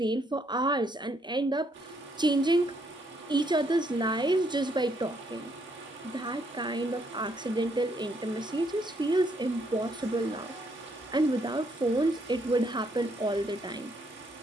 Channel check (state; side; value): normal; both; correlation 0.72